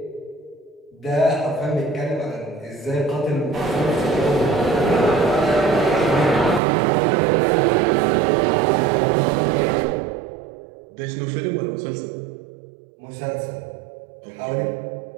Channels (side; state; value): left; drops out; at 6.6 s